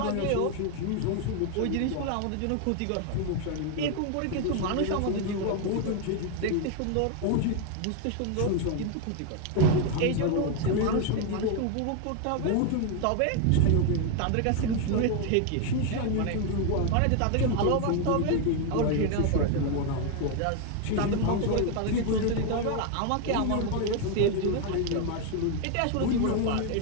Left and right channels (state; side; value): different; both; correlation 0.01